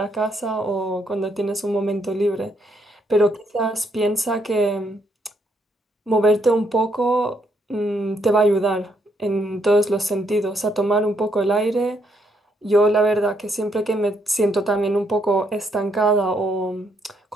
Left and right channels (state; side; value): normal; both; correlation 0.74